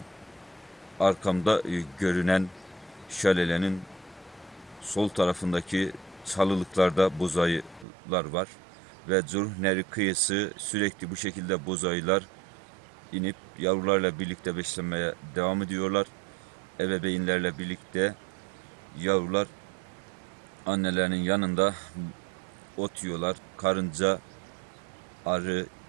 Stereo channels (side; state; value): left; drops out; at 7.9 s